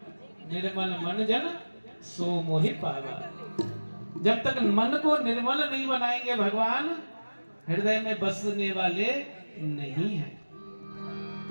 निर्मल मन जन सो मोहि पावा। जब तक मन को निर्मल नहीं बनाएंगे भगवान हृदय में बसने वाले नहीं हैं।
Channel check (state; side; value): inverted; both; correlation -1.00